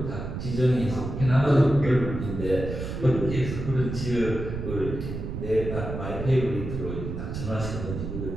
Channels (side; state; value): right; noise; rumble, 6 dB below the sound